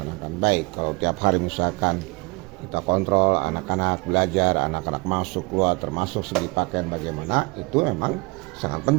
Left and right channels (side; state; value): left; quieter; 26.5 dB